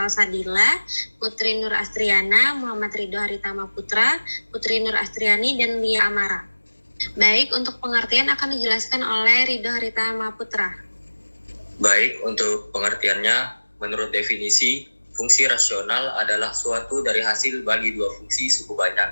Sadila, Putri Nur Astriana, Muhammad Ridho Haritama Putra, Putri Nur Astriani, dan Lia Amara. Baik, untuk pengertian akan dijelaskan oleh Ridho Haritama Putra. Baik, untuk pengertiannya, menurut definisi, fungsi rasional adalah suatu dari hasil bagi dua fungsi suku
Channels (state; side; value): inverted; both; correlation -1.00